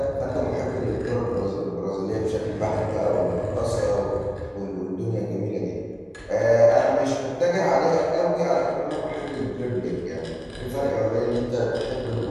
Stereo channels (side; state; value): both; identical; correlation 1.00